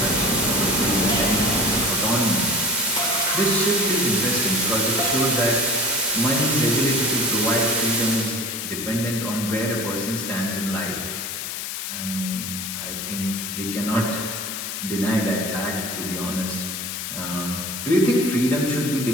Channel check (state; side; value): noise; left; hiss, 5 dB below the sound